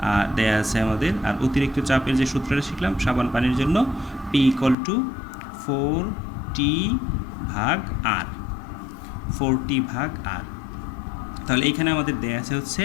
দেয়া আছে আমাদের, আর অতিরিক্ত চাপের যে সূত্রটা শিখলাম সাবান পানির জন্য, পি ইকুয়াল টু 4t ভাগ আর, 4t ভাগ আর। তাহলে এইখানে আমাদের দেয়া আছে হচ্ছে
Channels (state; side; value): drops out; right; at 4.8 s